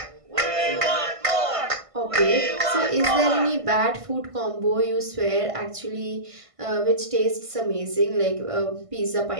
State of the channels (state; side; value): late; left; 1.5 ms